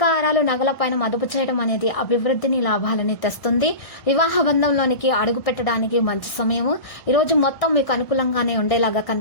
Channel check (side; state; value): right; late; 1.6 ms